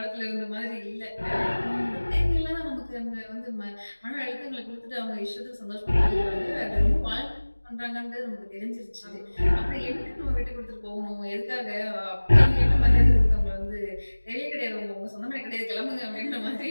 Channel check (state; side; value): inverted; both; correlation -1.00